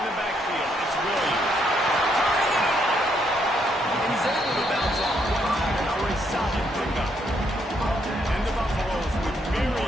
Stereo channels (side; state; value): both; normal; correlation 0.74